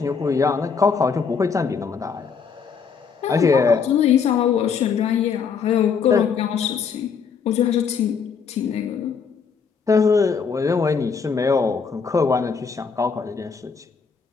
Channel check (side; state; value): right; quieter; 6.0 dB